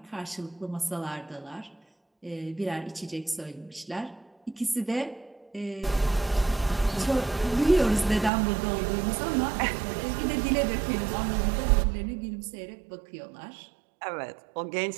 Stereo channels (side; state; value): left; drops out; at 8.3 s